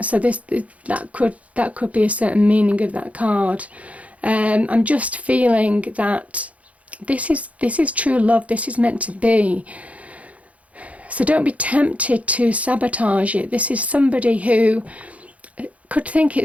that could be a certain meaning of that card. I'm just feeling that this is true love. This is meant to be. So don't be tempted to sabotage it. This is somebody who could think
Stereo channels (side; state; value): left; late; 0.067 ms